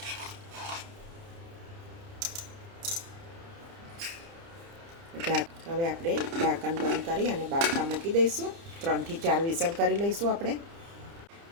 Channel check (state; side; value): late; left; 30 ms